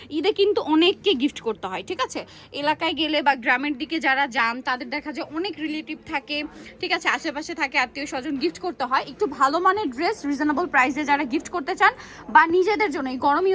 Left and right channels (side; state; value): both; identical; correlation 1.00